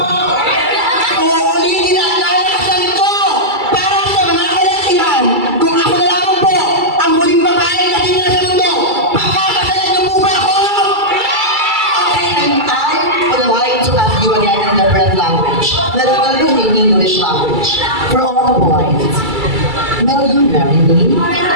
Uulitin ang lalakasan ko para sa mga kalalakihan, kung ako na lamang po ang huling babaeng nandito sa mundo, pagkakasalan niyo po ba ako? Okay, and I would like to ask you again in different language. Let's go using English language. For all the boys, will you marry me?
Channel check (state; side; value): late; left; 2.3 ms